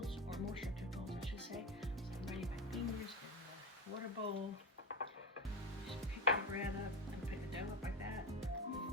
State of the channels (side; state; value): both; normal; correlation 0.19